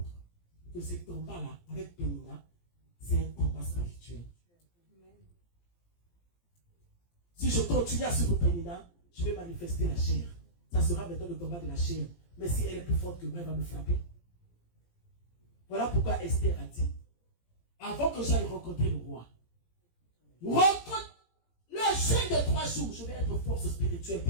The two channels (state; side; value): late; right; 17 ms